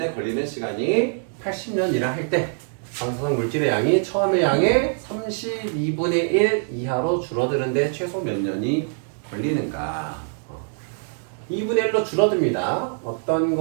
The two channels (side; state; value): left; silent; digital silence